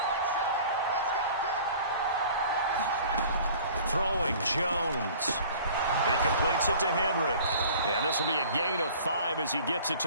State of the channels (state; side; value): inverted; both; correlation -0.48